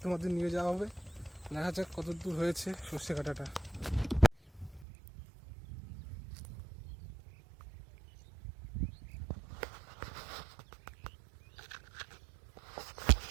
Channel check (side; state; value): left; drops out; at 4.9 s